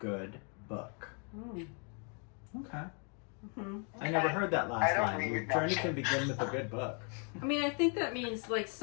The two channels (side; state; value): right; quieter; 38.8 dB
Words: book. Okay. Mm-hmm. I never heard that last don't line. Your read journey that. can begin with a good book. I mean, I think that means like